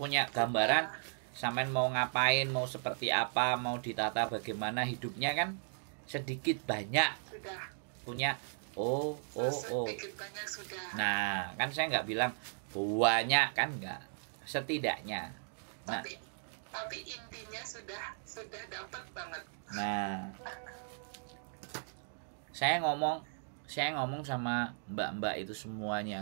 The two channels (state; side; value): silent; left; digital silence